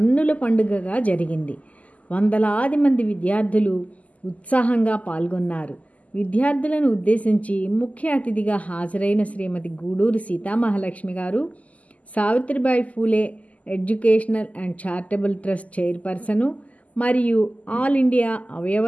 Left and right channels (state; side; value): late; right; 0.072 ms